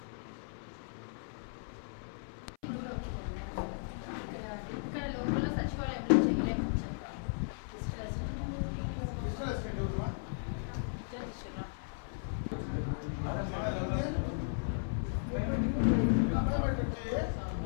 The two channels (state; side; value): silent; right; 54 dB below the other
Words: ఇక్కడ లోపల సచివాలయంలో చేయలేమని చెప్పారు.